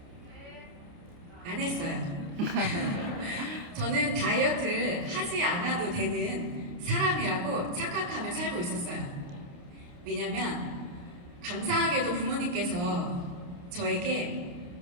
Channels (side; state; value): left; late; 29 ms